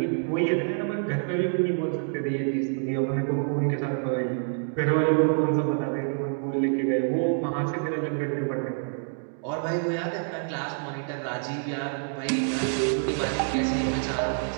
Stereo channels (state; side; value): silent; left; 60 dB below the other